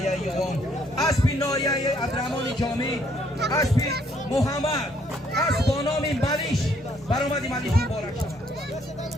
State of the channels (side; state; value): both; normal; correlation 0.67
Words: یوان اسبی نایه عبدالرحمن جامی اسبی محمد اسب با نام ملیش برآمدی ملیش مبارک شود